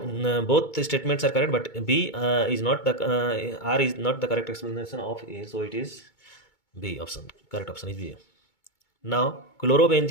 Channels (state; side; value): late; right; 2.2 ms